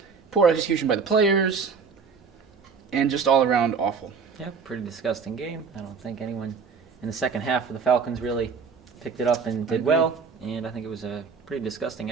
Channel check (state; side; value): quieter; left; 5.6 dB